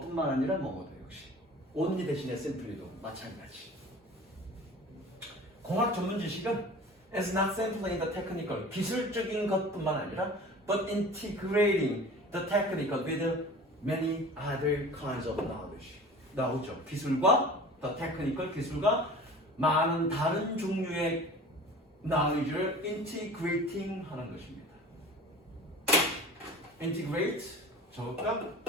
아니라 뭐뭐도 역시. only 대신에 simply도 마찬가지. 공학 전문 지식은 is not simply in the technical. 기술적인 것뿐만 아니라 but integrating the technical with many other kinds of knowledge. 나오죠. 기술과 the technical 기술과 많은 다른 종류의 knowledge를 integrating 하는 것입니다. integrate 적을까?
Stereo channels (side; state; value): both; normal; correlation 0.40